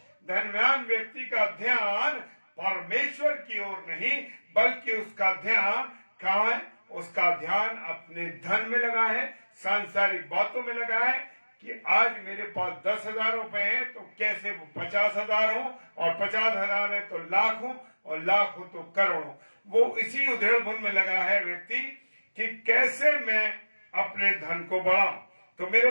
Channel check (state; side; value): inverted; both; correlation -1.00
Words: धनवान व्यक्ति का ध्यान परमेश्वर की ओर नहीं, बल्कि उसका ध्यान कहां है, उसका ध्यान अपने धन में लगा है, सांसारिक बातों में लगा है कि आज मेरे पास 10,000 रुपए हैं तो कैसे वो 50,000 हो, और 50,000 है तो लाख हो, और लाख हो तो करोड़ हो। वो इसी उधेड़ बुन में लगा है व्यक्ति कि कैसे मैं अपने धन को बढ़ाऊं। तो